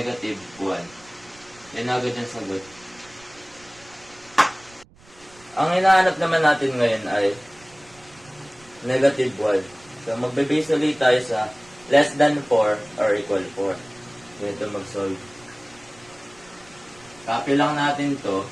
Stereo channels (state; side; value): noise; right; rumble, 26 dB below the sound